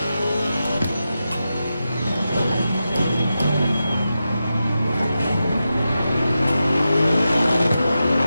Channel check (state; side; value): inverted; both; correlation -0.90